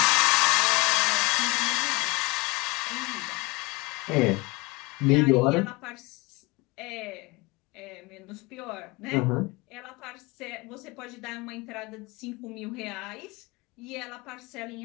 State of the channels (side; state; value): right; quieter; 25.2 dB